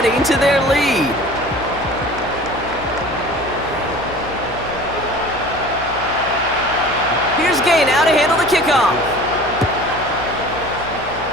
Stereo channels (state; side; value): noise; left; hum, 15 dB below the sound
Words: to their lead. Here's Gay now to handle the kickoff.